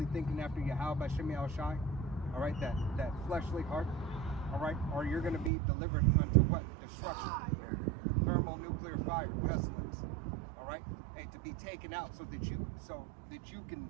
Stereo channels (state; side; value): drops out; left; at 5.5 s